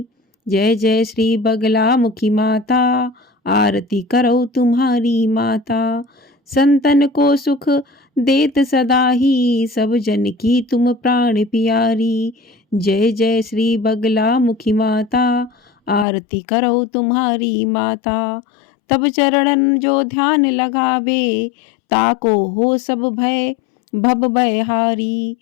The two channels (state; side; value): drops out; right; at 16.1 s